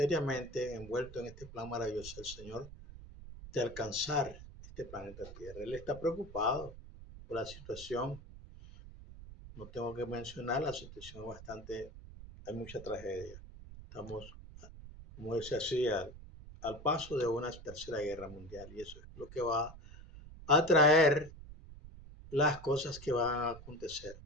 envueltos en este plan maravilloso del Señor de alcanzar este planeta Tierra. Él está preocupado por la situación. No tengo que mencionar la situación bastante, hay mucha tragedia. Estamos, como dice así, al paso de una tercera guerra mundial y eso es lo que va a traer las cosas que van a acontecer.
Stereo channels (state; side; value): noise; right; rumble, 15 dB below the sound